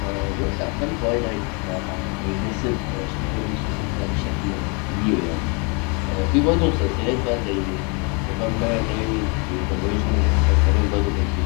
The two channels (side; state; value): right; quieter; 33.5 dB